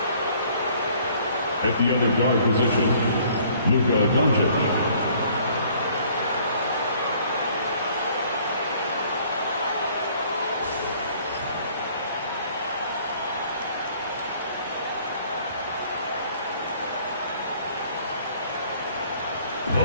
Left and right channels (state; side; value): inverted; both; correlation -0.58